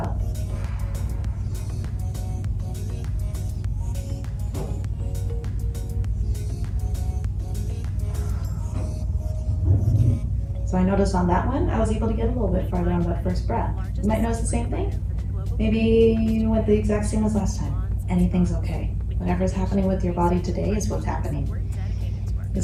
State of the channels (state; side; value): identical; both; correlation 1.00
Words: So I noticed on that one, I was able to get a little bit farther on that first breath. You might notice the same thing. Maybe you went the exact same as last time. Anything's okay. Whatever's happening with your body today is what's happening.